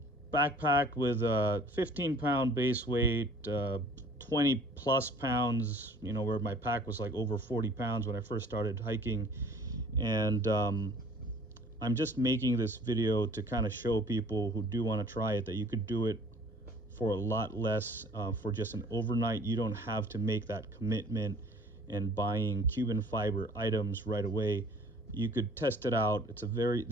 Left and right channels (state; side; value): normal; both; correlation 0.53